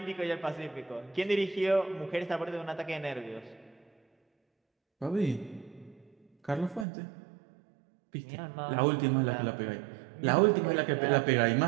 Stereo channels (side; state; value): left; drops out; at 6.9 s